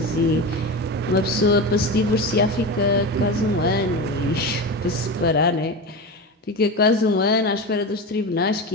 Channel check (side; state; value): both; normal; correlation 0.23